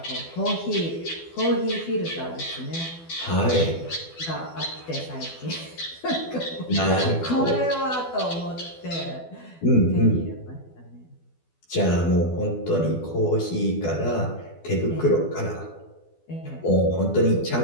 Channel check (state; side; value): late; right; 12 ms